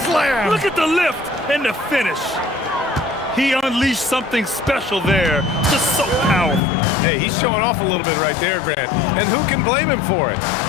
slam. Look at the lift and the finish. He unleashed something special there. Just so powerful. Hey, he's showing off a little bit right there, Grant. And who can blame him for it?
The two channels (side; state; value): right; drops out; at 6.6 s